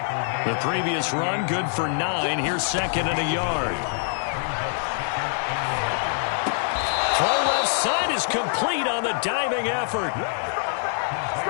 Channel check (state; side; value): silent; right; digital silence